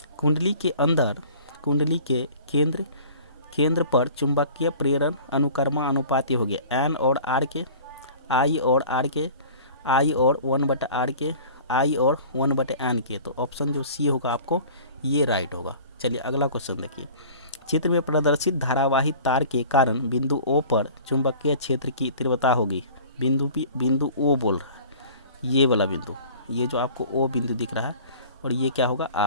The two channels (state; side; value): inverted; both; correlation -0.45